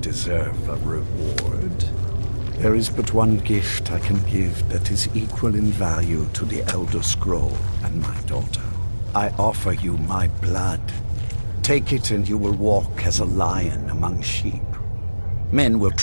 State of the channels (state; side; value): inverted; both; correlation -1.00